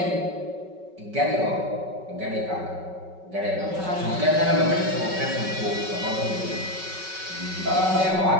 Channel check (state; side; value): late; left; 5.3 ms